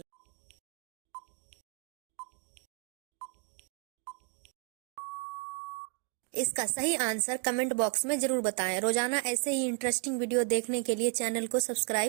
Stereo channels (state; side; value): quieter; left; 39.9 dB